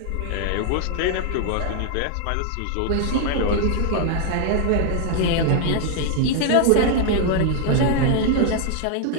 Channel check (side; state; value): both; different; correlation 0.00